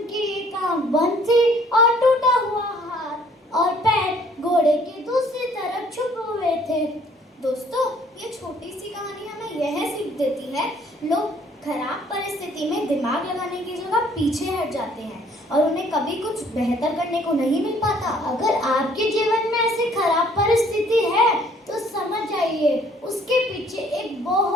एक आंख बंद थी और टूटा हुआ हाथ और पैर घोड़े के दूसरी तरफ छुपे हुए थे. दोस्तों, ये छोटी सी कहानी हमें यह सीख देती है, लोग खराब परिस्थिति में दिमाग लगाने की जगह पीछे हट जाते हैं और उन्हें कभी कुछ बेहतर करने को नहीं मिल पाता. अगर आपके जीवन में ऐसी खराब परिस्थिति है तो समझ जाइए उसके पीछे एक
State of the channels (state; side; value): normal; both; correlation 0.60